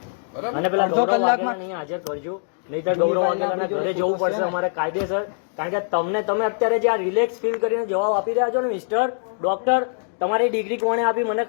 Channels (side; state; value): right; silent; digital silence